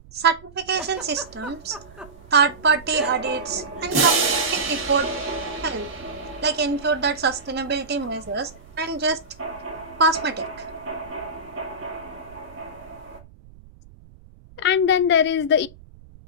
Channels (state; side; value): noise; right; rumble, 22 dB below the sound